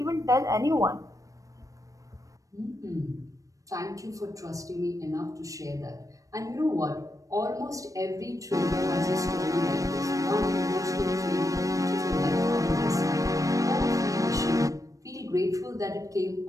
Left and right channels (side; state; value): left; late; 0.16 ms